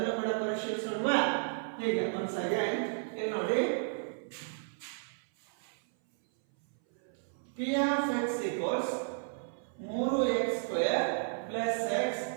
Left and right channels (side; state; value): left; silent; 56 dB below the other